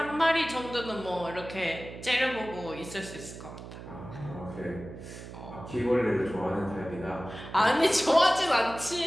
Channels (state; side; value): noise; right; hum, 13 dB below the sound